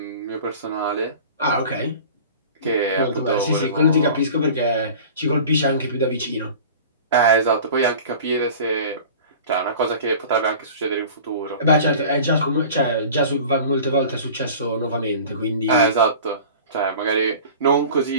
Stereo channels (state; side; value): inverted; both; correlation -0.41